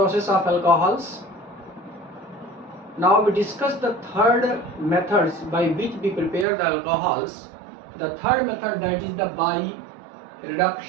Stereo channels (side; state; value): left; drops out; at 6.5 s